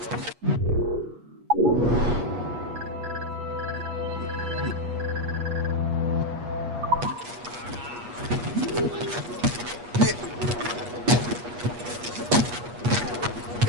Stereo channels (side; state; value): left; late; 8.3 ms